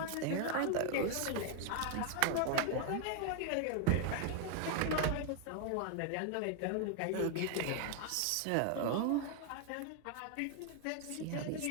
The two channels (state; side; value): different; both; correlation 0.00